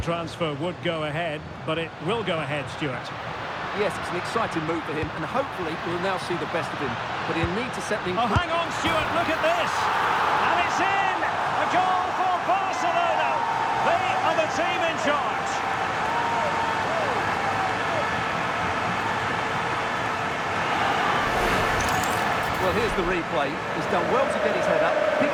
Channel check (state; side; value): identical; both; correlation 1.00